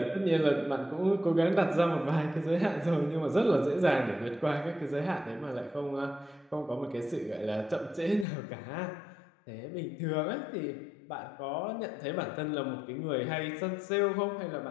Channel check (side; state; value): right; drops out; at 8.2 s